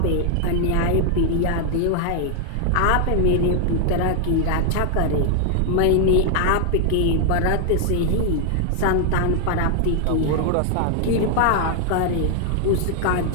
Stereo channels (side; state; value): both; different; correlation 0.00